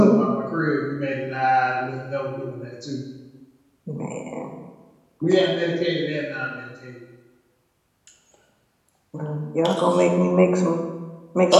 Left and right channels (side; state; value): both; identical; correlation 1.00